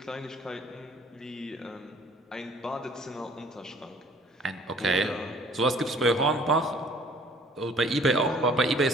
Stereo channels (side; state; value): both; normal; correlation 0.54